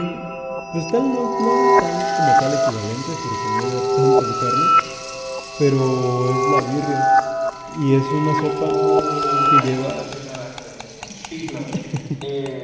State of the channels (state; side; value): identical; both; correlation 1.00